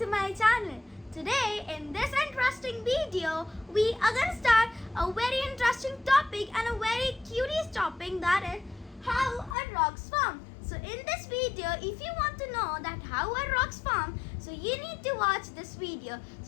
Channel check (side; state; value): right; drops out; at 9.6 s